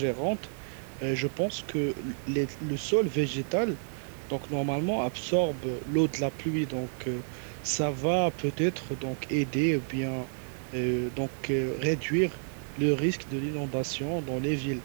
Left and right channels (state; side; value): silent; left; digital silence